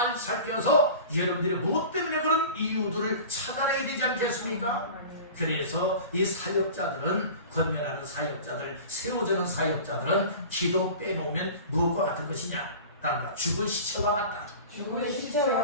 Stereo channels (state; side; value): inverted; both; correlation -0.38